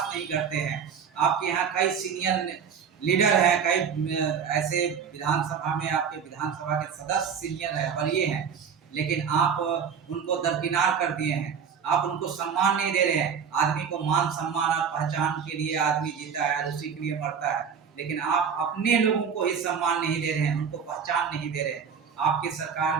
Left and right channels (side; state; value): left; quieter; 6.9 dB